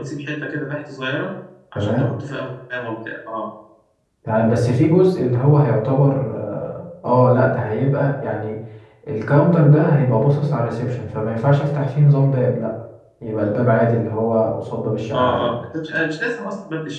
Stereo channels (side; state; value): both; identical; correlation 1.00